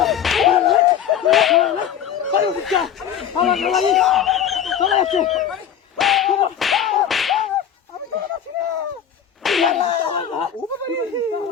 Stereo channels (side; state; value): right; quieter; 8.9 dB